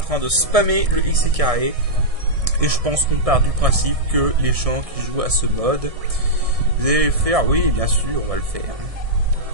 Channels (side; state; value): left; late; 1.6 ms